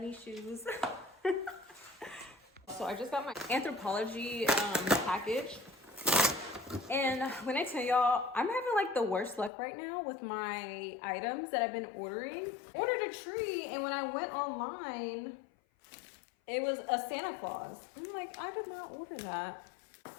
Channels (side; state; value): right; drops out; at 9.5 s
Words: shoes. So I just got my Anthropologie package. And when I tell y'all, I'm having like the worst luck right now with my items that I've been ordering. Ordered a tree, and when I went online, it was a Santa Claus. I'm like, I did not order that.